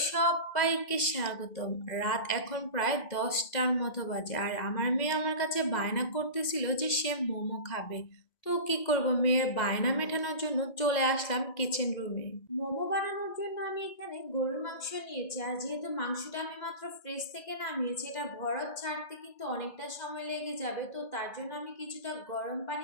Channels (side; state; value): right; late; 2.0 ms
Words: সবাইকে স্বাগতম। রাত এখন প্রায় 10টার মতো বাজে, আর আমার মেয়ে আমার কাছে বায়না করতেছিল যে সে মোমো খাবে। তো কি করব, মেয়ের বায়না মেটানোর জন্য চলে আসলাম কিচেন রুমে। মোমো বানানোর জন্য আমি এখানে গরুর মাংস নিয়েছি, আর যেহেতু মাংসটা আমি মাত্র ফ্রিজ থেকে নামিয়েছি, এটা বরফ ছাড়তে কিন্তু অনেকটা সময় লেগে যাবে। তো তার জন্য আমি কিছুটা গরম